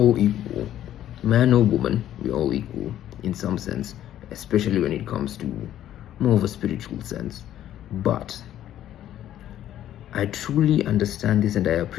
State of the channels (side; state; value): right; quieter; 11.9 dB